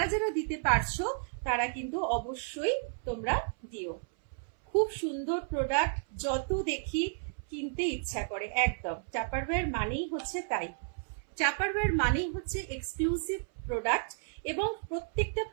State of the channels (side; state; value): left; silent; 56 dB below the other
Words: যারা দিতে পারছো তারা কিন্তু অবশ্যই তোমরা দিও। খুব সুন্দর প্রোডাক্ট, যত দেখি কিনতে ইচ্ছা করে। একদম টাপারওয়্যার মানেই হচ্ছে তাই। টাপারওয়্যার মানেই হচ্ছে এক্সক্লুসিভ প্রোডাক্ট, এবং প্রত্যেকটা